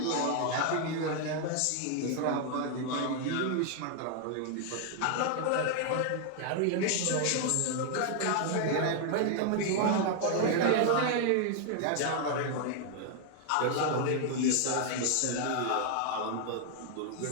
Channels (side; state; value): both; different; correlation 0.00